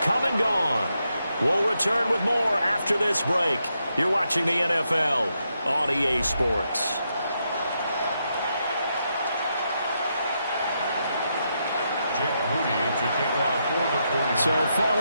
come and gone. We'll return with more after this break. You're watching the NFL on EA Sports. So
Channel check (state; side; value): inverted; both; correlation -0.82